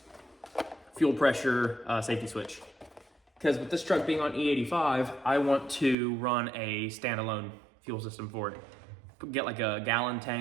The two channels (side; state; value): left; drops out; at 6.0 s